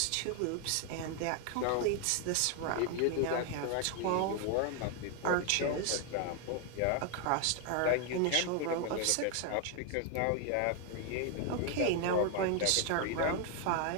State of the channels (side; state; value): both; different; correlation 0.00